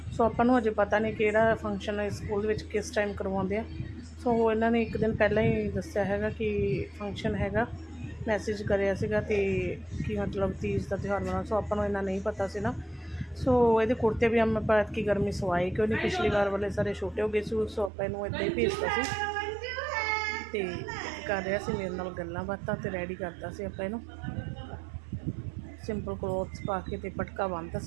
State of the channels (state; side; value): drops out; left; at 17.9 s